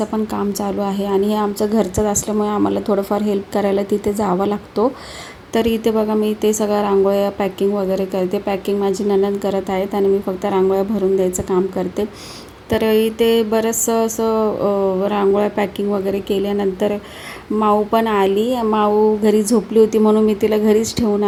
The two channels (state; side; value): identical; both; correlation 1.00